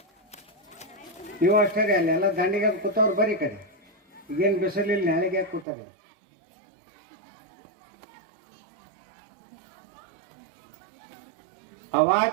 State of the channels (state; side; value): drops out; left; at 5.7 s